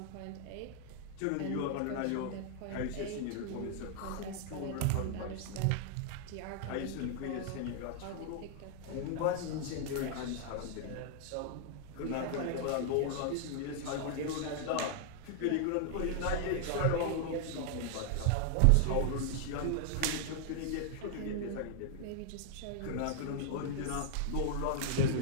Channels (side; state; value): both; different; correlation 0.00